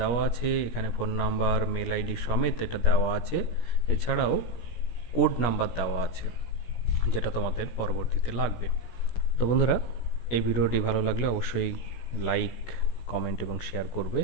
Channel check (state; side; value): late; right; 17 ms